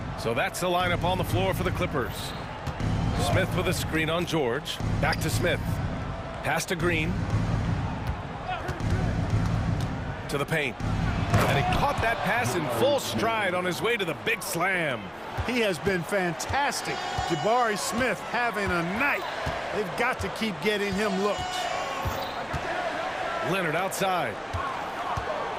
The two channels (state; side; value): identical; both; correlation 1.00